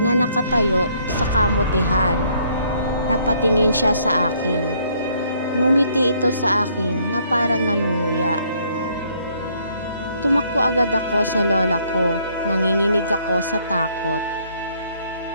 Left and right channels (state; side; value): inverted; both; correlation -0.66